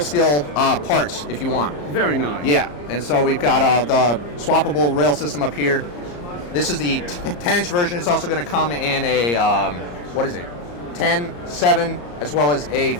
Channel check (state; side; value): late; right; 34 ms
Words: parts if you want. Very nice. Yeah, and so we've got the swappable rail system up here. This is the 10-inch version. It's also going to come in a, 10, 7, as well as a